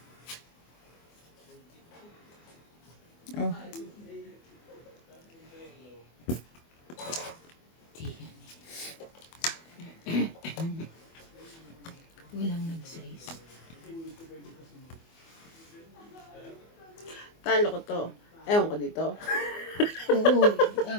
Oh, Di yan Walang nag-size. Talo ko to. Ewan ko dito. Oo,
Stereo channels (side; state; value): right; late; 24 ms